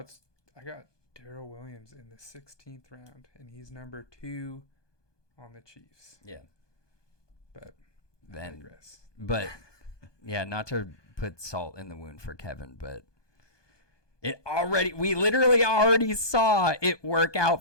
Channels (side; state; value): right; late; 1.2 ms